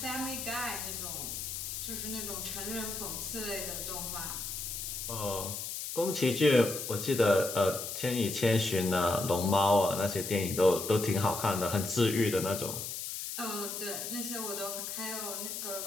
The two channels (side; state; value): left; noise; hiss, 5 dB below the sound